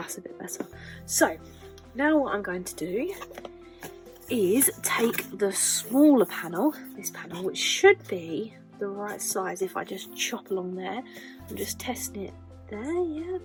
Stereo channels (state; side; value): identical; both; correlation 1.00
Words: a bit better. So now what I'm going to do is take the smaller panel, this panel, which should be the right size if I just chop along there. I'm just testing it there, yeah,